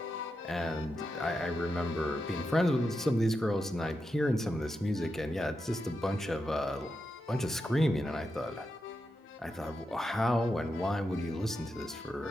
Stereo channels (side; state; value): both; normal; correlation 0.87